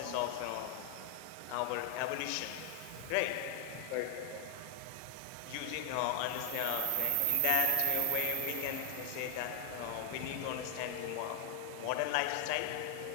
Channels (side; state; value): both; different; correlation 0.00